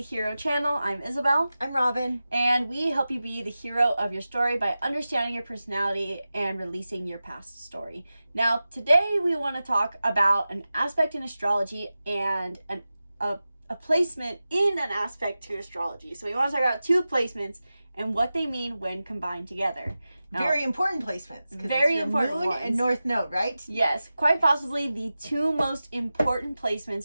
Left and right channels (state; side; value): inverted; both; correlation -0.94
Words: Hero channel. I'm Isabel. I'm Robin. And we help you be the hero of your story by understanding your personality and releasing your past story. Now, today we want to talk about an aspect in astrology and a placement in an aspect to astrology. So we want to talk about two placements and what they mean when combined together. Now, very important placements. Very important moon ones. And north node, right? Yes, quite possibly the two most important